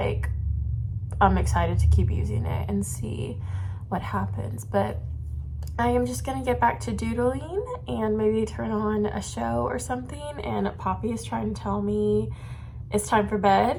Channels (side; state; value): both; identical; correlation 1.00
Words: I'm excited to keep using it and see what happens. But I am just gonna get back to doodling and maybe turn on a show or something. And Poppy is trying to tell me it's time for